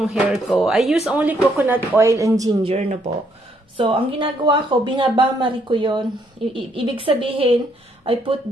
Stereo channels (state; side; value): normal; both; correlation 0.71